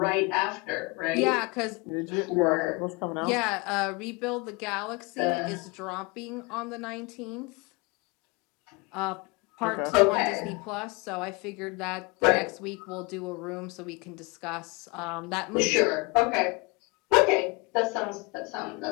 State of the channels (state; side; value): quieter; right; 26.9 dB